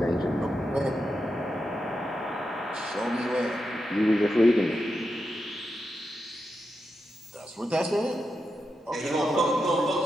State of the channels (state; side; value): normal; both; correlation 0.87